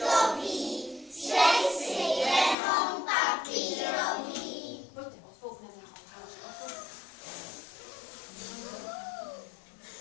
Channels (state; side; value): drops out; right; at 2.6 s